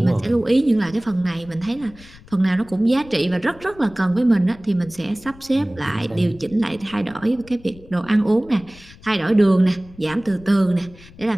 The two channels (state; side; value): noise; left; rumble, 22 dB below the sound